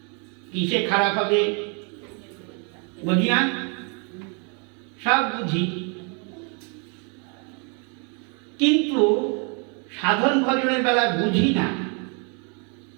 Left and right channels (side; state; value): left; quieter; 36.5 dB